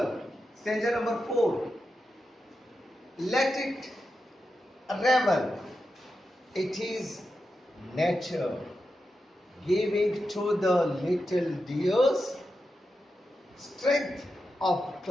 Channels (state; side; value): normal; both; correlation 0.89